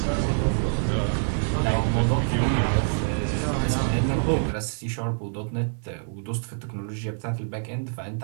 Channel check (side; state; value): left; silent; 61 dB below the other